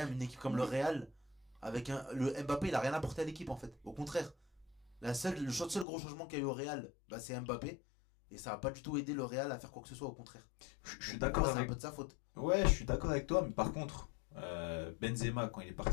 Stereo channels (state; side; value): drops out; right; at 5.9 s